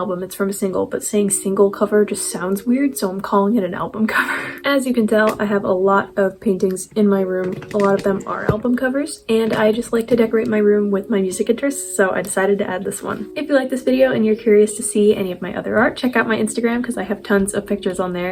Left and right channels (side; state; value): both; identical; correlation 1.00